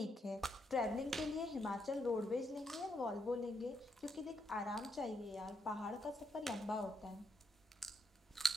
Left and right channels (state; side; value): normal; both; correlation 0.78